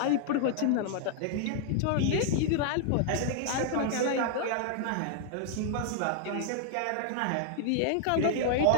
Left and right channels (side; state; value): both; different; correlation -0.01